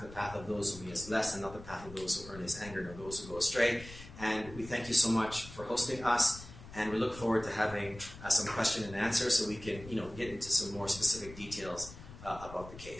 the path of those whom he has blessed, and not the path of those who earn his anger, nor those who go astray. And we thank you so much for hosting us, and we look forward to having some question and answer so we can get into some more specific details about the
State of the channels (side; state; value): left; noise; rumble, 15 dB below the sound